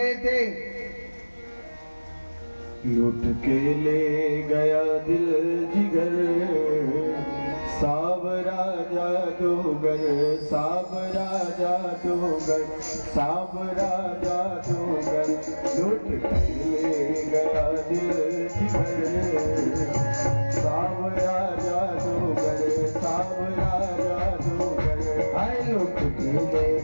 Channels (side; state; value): both; inverted; correlation -1.00